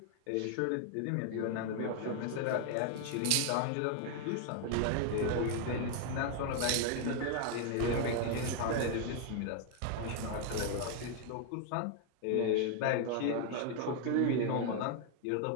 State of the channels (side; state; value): both; different; correlation 0.00